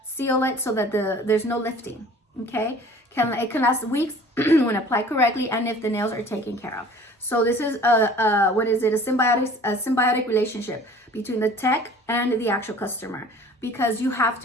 it so that there's no lifting. Okay, it can last weeks when applied correctly, and if the nails are taken care of. So this is a symbiotic relationship between the tech and the actual customer, because you have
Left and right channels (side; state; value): both; normal; correlation 0.48